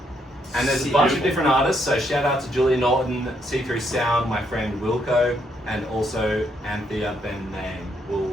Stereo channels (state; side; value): normal; both; correlation 0.74